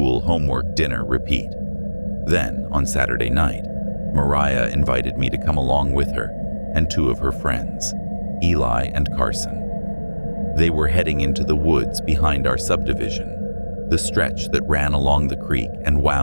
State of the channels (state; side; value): inverted; both; correlation -1.00